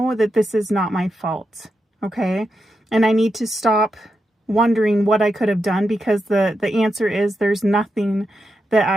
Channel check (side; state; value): both; normal; correlation 0.86